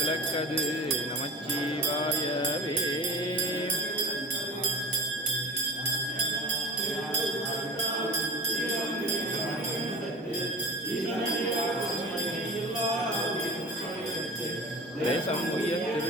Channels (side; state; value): both; normal; correlation 0.36